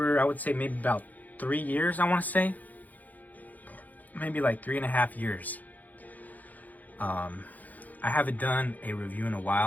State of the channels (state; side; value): late; right; 0.081 ms